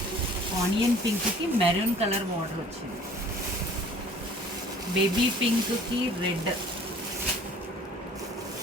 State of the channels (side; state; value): both; normal; correlation 0.51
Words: ఆనియన్ పింక్కి మెరూన్ కలర్ బార్డర్ వచ్చింది. బేబీ పింక్కి రెడ్.